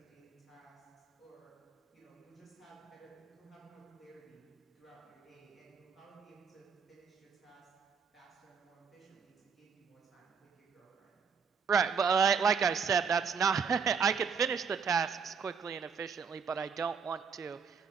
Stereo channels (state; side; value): quieter; left; 6.0 dB